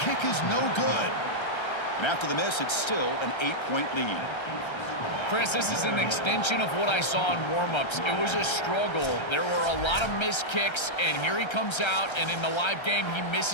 is no good. And after the miss, it's still an 8-point lead. Chris, this is an extension of what I saw in warm-ups. It was a struggle. There were a lot of missed kicks, and here he comes out, and in the live game, he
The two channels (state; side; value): late; right; 1.3 ms